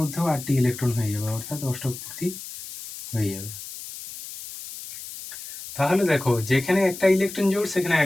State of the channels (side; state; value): left; noise; hiss, 11 dB below the sound